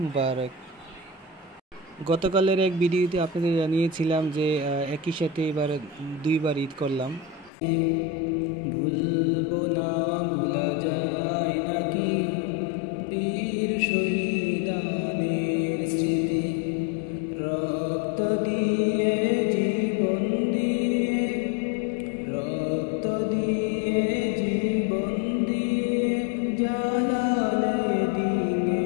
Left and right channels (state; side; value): drops out; right; at 7.5 s